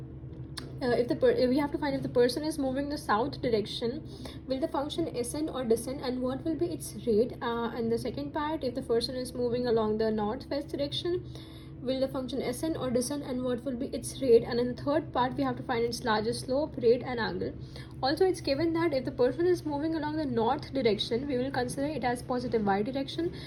we have to find if the person is moving the south direction, will the function ascend or descend, and what will be its rate. And the second part, if the person is moving along the northwest direction, will the function ascend or descend, and what will be its rate. And in the third part, we have to find its largest slope, rate and angle. Also, it's given that if the person is moving along the north direction, we will consider it as positive y direction,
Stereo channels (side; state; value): both; identical; correlation 1.00